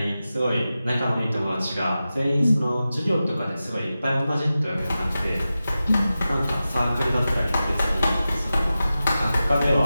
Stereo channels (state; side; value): inverted; both; correlation -0.94